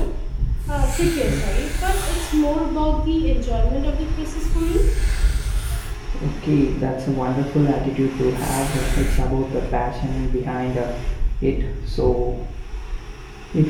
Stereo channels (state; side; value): identical; both; correlation 1.00